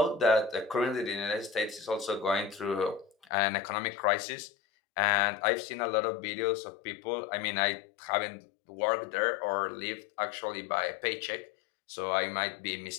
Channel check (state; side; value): drops out; right; at 3.2 s